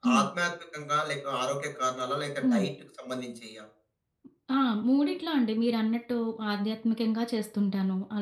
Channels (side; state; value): both; identical; correlation 1.00